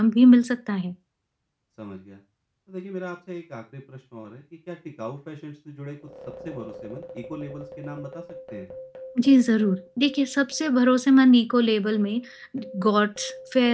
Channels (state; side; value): identical; both; correlation 1.00